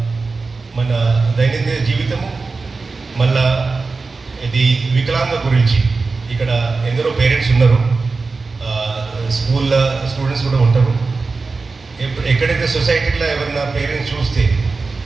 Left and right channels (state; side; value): quieter; left; 4.1 dB